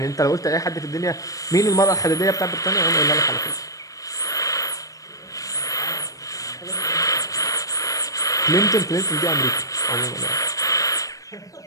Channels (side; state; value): right; late; 0.16 ms